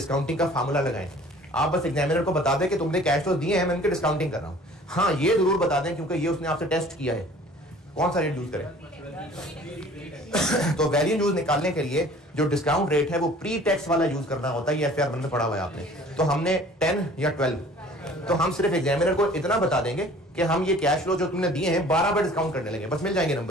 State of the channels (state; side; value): normal; both; correlation 0.49